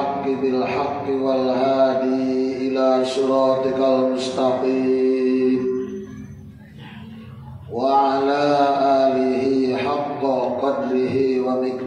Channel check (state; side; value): identical; both; correlation 1.00